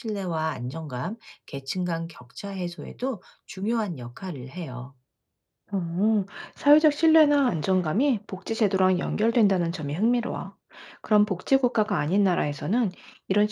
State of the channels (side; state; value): both; identical; correlation 1.00